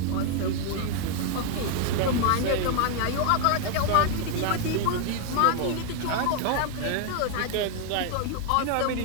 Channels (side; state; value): both; different; correlation 0.00